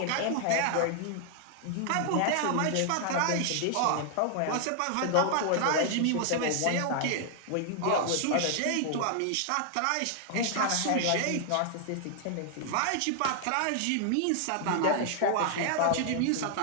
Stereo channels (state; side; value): different; both; correlation 0.00